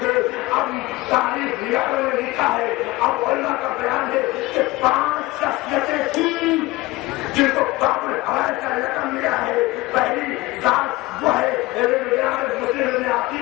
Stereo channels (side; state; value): right; quieter; 20.3 dB